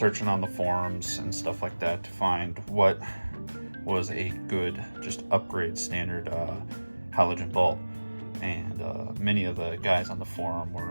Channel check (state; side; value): inverted; both; correlation -1.00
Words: on the forums and stuff like that to find what was a good, just upgrade standard halogen bulb. And many of the guys on the forum